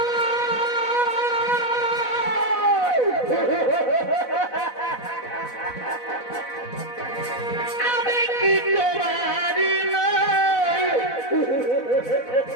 আমি কি তোমারি নই,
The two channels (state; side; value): late; right; 4.0 ms